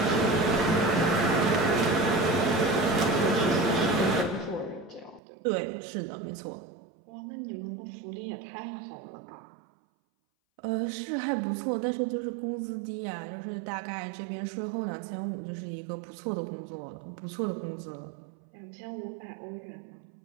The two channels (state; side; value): drops out; left; at 5.2 s